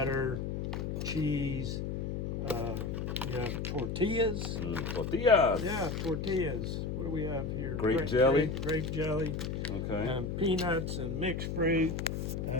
cheese. You have tortillas. Tortillas. Yeah, tortillas. What do we have here? Grape jelly. Grape jelly. Okay. And peanuts and mixed fruit,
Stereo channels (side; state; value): left; noise; hum, 3 dB below the sound